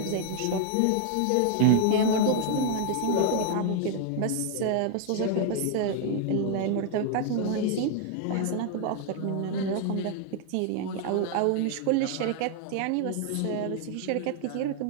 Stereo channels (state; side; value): different; both; correlation 0.00